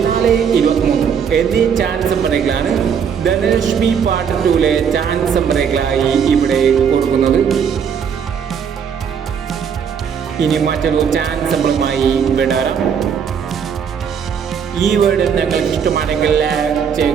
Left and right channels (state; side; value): quieter; left; 7.3 dB